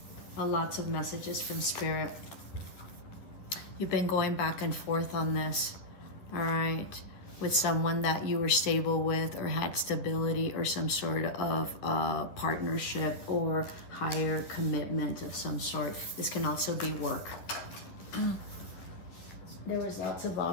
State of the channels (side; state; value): right; late; 11 ms